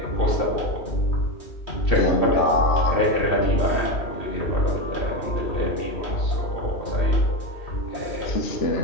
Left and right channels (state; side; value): late; right; 2.7 ms